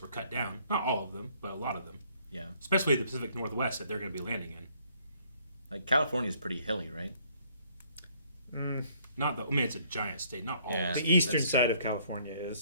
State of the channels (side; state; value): both; inverted; correlation -0.64